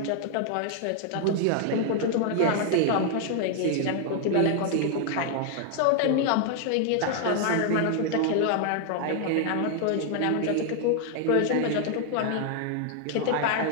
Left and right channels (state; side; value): different; both; correlation 0.00